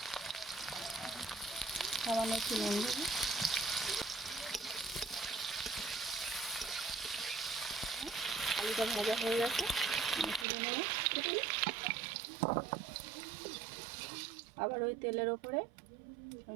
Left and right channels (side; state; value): left; drops out; at 10.5 s